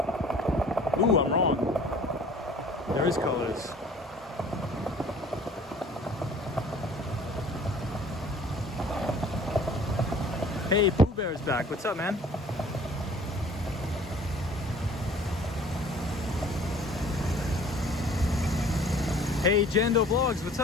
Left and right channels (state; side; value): normal; both; correlation 0.51